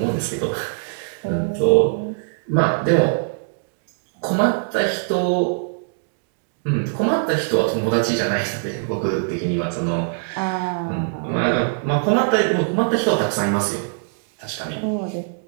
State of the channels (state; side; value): silent; left; digital silence